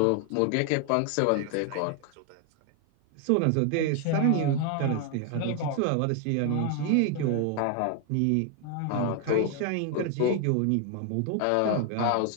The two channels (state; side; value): different; both; correlation 0.01